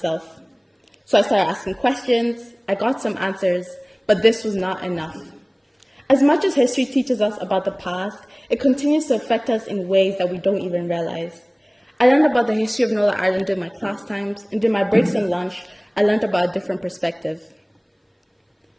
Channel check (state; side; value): identical; both; correlation 1.00